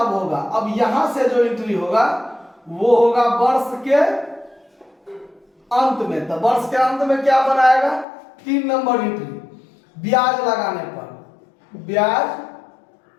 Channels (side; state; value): right; drops out; at 8.1 s